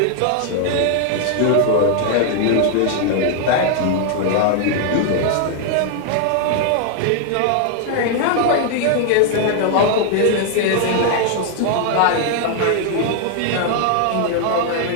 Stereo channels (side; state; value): both; different; correlation 0.00